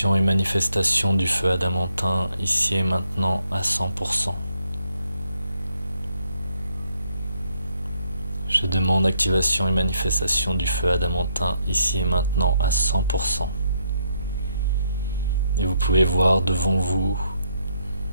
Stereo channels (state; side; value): inverted; both; correlation -0.74